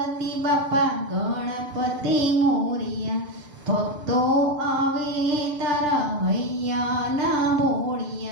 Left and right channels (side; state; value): left; late; 7.8 ms